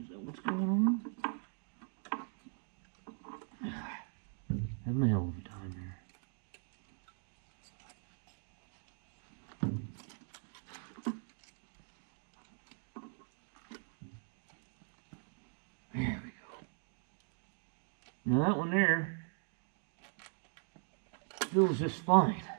Is that what's going on? Having a hell of a time here. There we go. Now that one there feels just fine.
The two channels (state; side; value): silent; left; 51 dB below the other